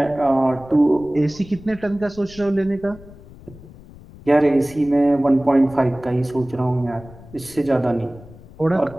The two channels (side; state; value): left; noise; rumble, 20 dB below the sound